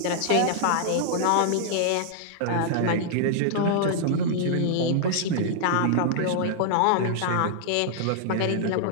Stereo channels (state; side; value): different; both; correlation -0.01